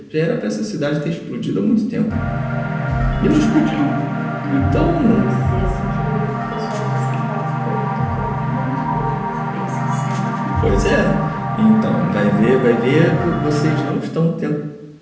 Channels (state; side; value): identical; both; correlation 1.00